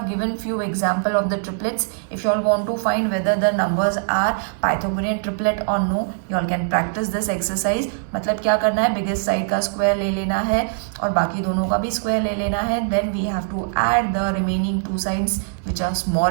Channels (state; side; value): silent; left; 61 dB below the other